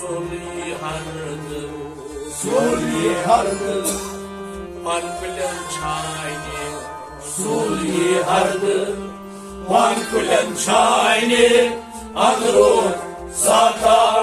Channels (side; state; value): both; identical; correlation 1.00